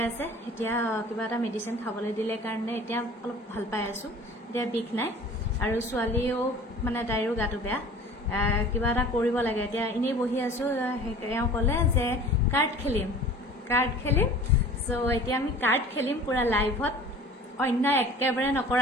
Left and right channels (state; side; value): normal; both; correlation 0.44